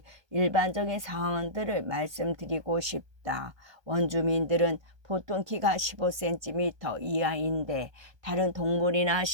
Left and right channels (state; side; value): late; left; 1.2 ms